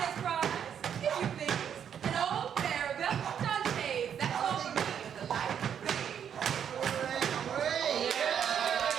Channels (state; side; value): quieter; left; 8.5 dB